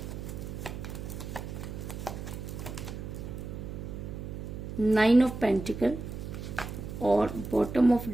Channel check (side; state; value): right; noise; hum, 8 dB below the sound